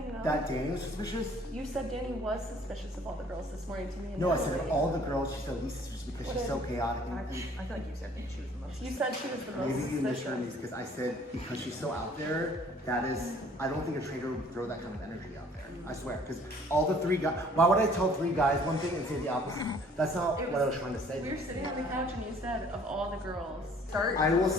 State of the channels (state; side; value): normal; both; correlation 0.56